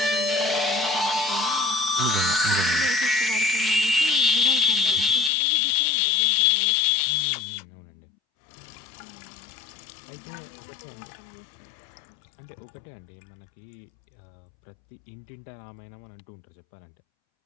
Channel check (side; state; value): right; drops out; at 5.3 s